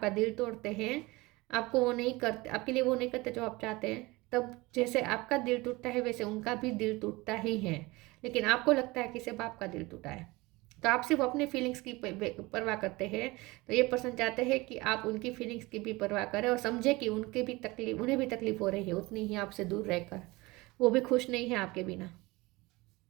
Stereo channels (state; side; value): quieter; left; 22.2 dB